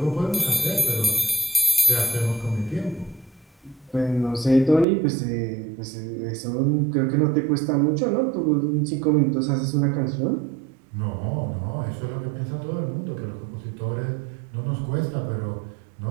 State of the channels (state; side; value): drops out; left; at 4.9 s